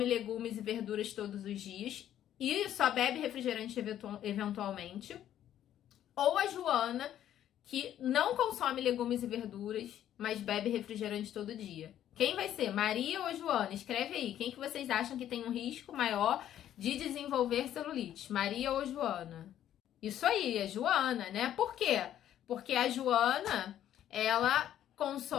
legumes e verduras todos os dias e só bebe refrigerante eventualmente, ou a Joana, que não consome legumes e verduras, mas bebe refrigerante todo dia. Quem vai ser, Maria ou Joana? Escreve aí, quem que vocês acham que tem um risco maior de desenvolver celulite, Maria ou Joana? Isso aí, é Joana, né? Por quê? Porque a Joana, ela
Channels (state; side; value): quieter; right; 11.3 dB